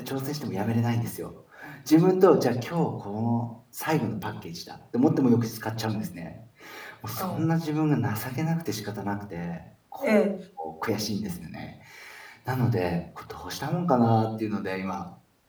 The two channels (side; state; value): both; identical; correlation 1.00